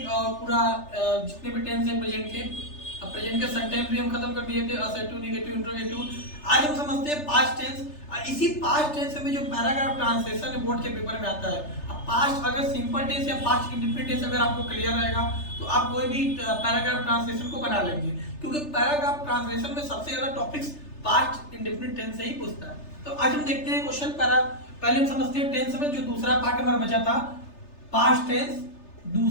और पूरा जितने भी टेंस है प्रेजेंट के। अब प्रेजेंट के सेंटेंस भी हम खत्म कर दिए थे, असर्टिव, नेगेटिव, इंट्रोगेटिव। आज हम समझते हैं पास्ट टेंस। इसी पास्ट टेंस में जो पैराग्राफ ट्रांसलेशन है बोर्ड के पेपर में आता है। अब पास्ट अगर सिंपल टेंस या पास्ट इंडेफिनिट टेंस अगर आपको क्लियर रहेगा तो आप कोई भी पैराग्राफ ट्रांसलेशन को बना लेंगे, क्योंकि पैराग्राफ ट्रांसलेशन में सबसे ज्यादा टॉपिक्स पास्ट इंडेफिनिट टेंस से ही पूछता है। तो आज हम देखते हैं क्वेश्चन पहले हम समझते हैं टेंस में जो दूसरा पार्ट हमारा बचा था पास्ट टेंस,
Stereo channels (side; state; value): right; late; 3.3 ms